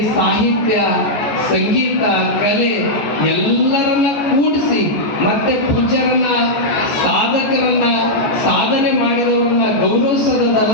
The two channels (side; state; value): right; late; 14 ms